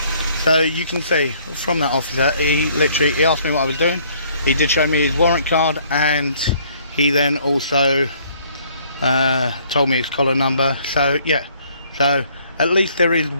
So you can see from that officer, he asked me what I was doing. He did show me his warrant card, and he then also told me his collar number. So yeah, so at least there is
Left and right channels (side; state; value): both; inverted; correlation -0.61